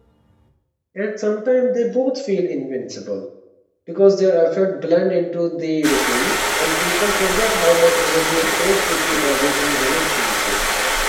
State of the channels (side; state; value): both; identical; correlation 1.00